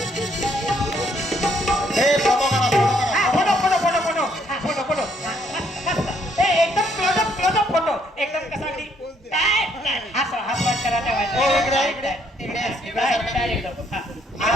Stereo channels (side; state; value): both; normal; correlation 0.69